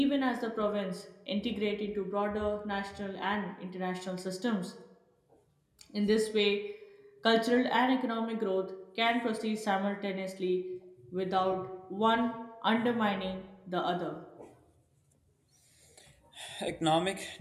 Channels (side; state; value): both; identical; correlation 1.00